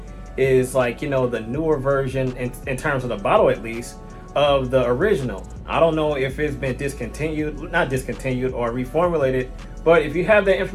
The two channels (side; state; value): both; identical; correlation 1.00